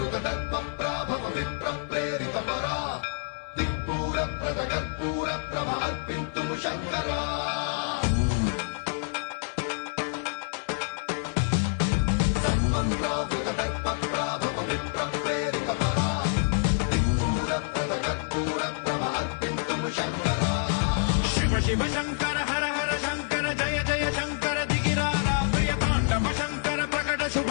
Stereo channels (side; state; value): right; silent; 60 dB below the other